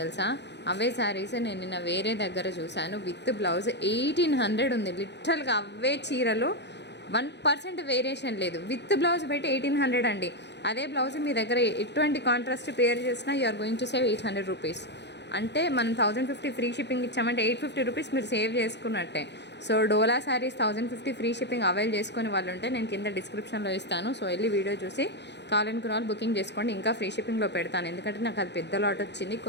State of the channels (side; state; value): right; late; 0.50 ms